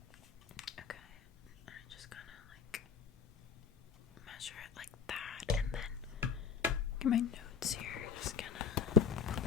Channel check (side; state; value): right; quieter; 6.6 dB